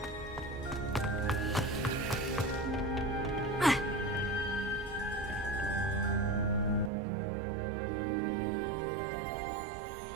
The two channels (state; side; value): drops out; left; at 6.9 s